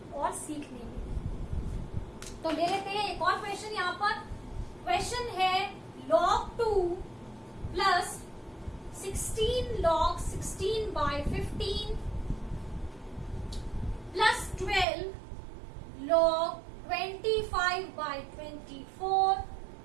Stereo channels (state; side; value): drops out; left; at 14.9 s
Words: और सीखने में। तो ले लेते हैं एक और क्वेश्चन। यहाँ पर क्वेश्चन है log 2 plus 16 log 16/15 plus 12 log 25/24